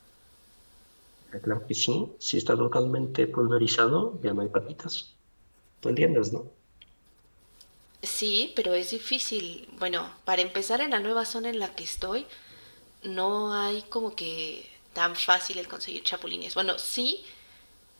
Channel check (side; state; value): both; inverted; correlation -1.00